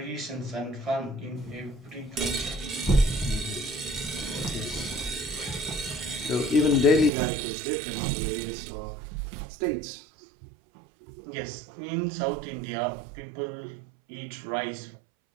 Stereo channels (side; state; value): left; drops out; at 7.1 s